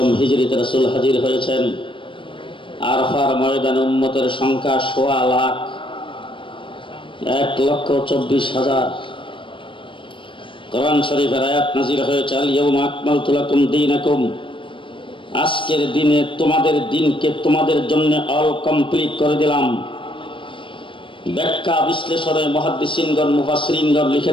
হিজরিতে রাসূল হাজির হয়েছেন। আরফার ময়দানে উম্মতের সংখ্যা ১৬ লাখ, ১,২৪,০০০। কোরআন শরীফের আয়াত নাযিল হয়েছে, আল ইয়াউমা আকমালতু লাকুম দীনাকুম, আজকের দিনে তোমাদের দিনকে তোমাদের জন্য অল কমপ্লিট করে দিলাম। ব্যাখ্যা বিশ্লেষণে মুহাদ্দিসিনগণ মুফাসসিরিনগণ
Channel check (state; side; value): late; right; 0.25 ms